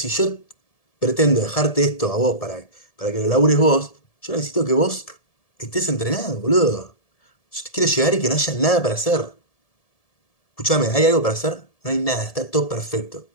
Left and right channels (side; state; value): right; late; 1.7 ms